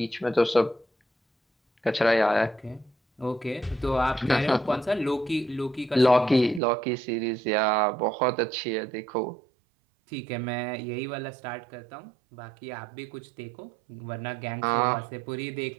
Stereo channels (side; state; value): left; drops out; at 6.6 s